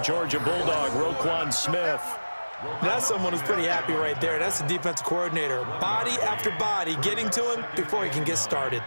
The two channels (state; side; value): inverted; both; correlation -1.00